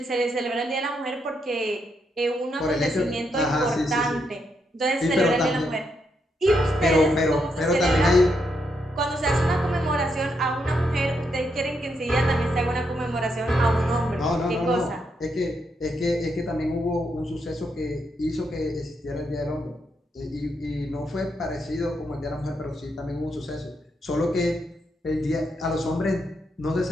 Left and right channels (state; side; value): normal; both; correlation 0.79